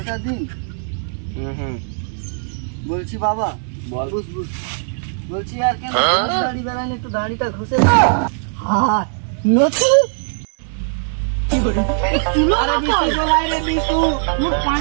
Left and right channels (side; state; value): left; silent; digital silence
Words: দিন হুম বলছি বাবা বল। বুঝ বুঝ বলছি আর কেন দাড়ি বেড়ান একটু দাড়িটা ঘষে হ্যাঁ নতু আরে বিশু মোর